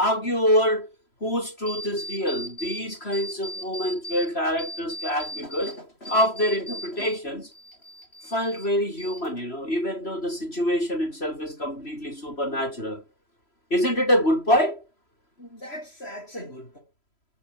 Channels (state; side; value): late; right; 3.0 ms